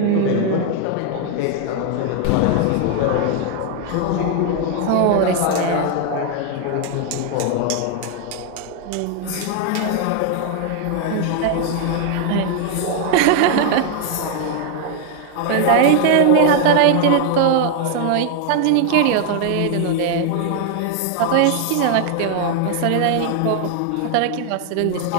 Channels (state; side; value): different; both; correlation 0.00